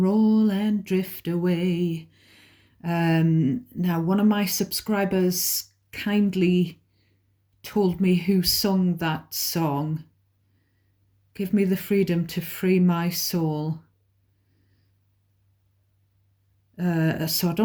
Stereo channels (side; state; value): both; identical; correlation 1.00